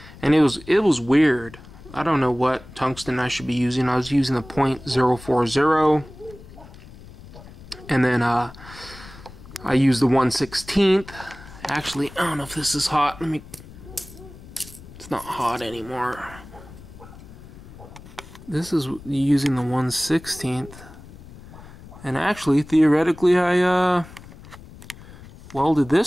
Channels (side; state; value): left; noise; rumble, 18 dB below the sound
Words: and it was weird. I don't know what tungsten I should be using. I was using the .040, and then I used the 1/16. Actually, I don't know if this is hot. It's not hot anymore. This is using the 1/16, and actually, theoretically, I welded